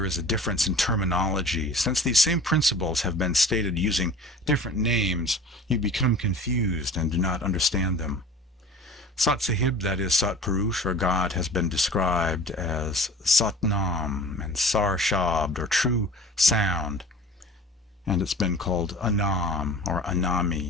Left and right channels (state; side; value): normal; both; correlation 0.42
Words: is a difference in terminology. Since these same principles have been stated using different names, you become confused and do not understand them. Sat Sahib, that is Sat Purush, or God, has been described as Satnam and Sar Shabd, or true sound, and it's been called Anam, or